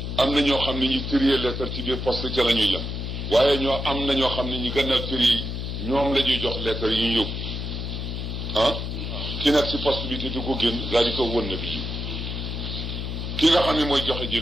am na ñoo xam ne ñi trier lettre ci biir poste ca la ñuy yem waaye ñoo am na ñoo xam ne ñi gannaaw trier ñoom la ñuy jox lettre yi ñu yóbbu ah ki nekk ci poste bi te du ko génn daal di ko won nabiyu ki nga xam ne mooy joxe ji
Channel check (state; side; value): noise; left; hum, 4 dB below the sound